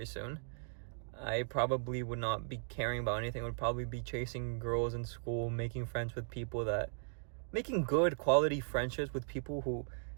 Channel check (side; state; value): left; silent; digital silence